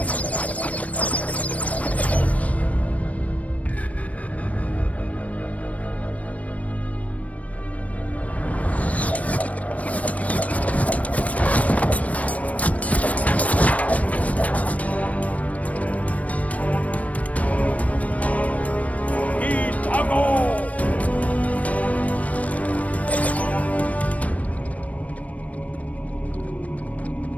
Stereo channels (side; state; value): right; late; 0.067 ms